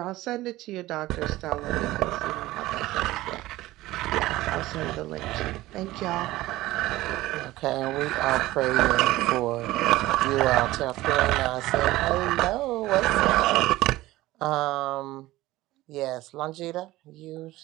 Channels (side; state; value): left; quieter; 17.3 dB